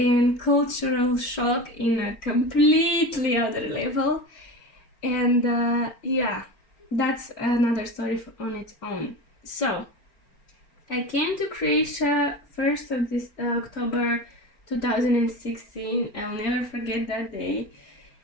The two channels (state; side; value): late; right; 4.4 ms